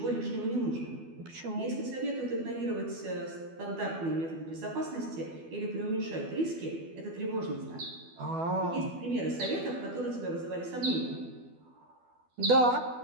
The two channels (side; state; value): left; late; 12 ms